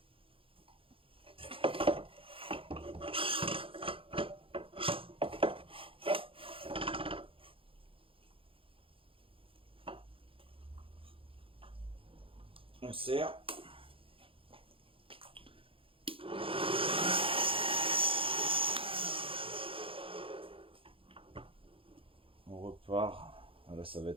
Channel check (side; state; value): left; late; 0.26 ms